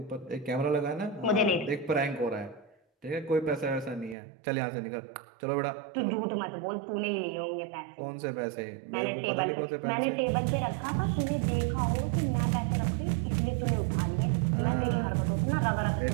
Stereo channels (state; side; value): drops out; left; at 4.2 s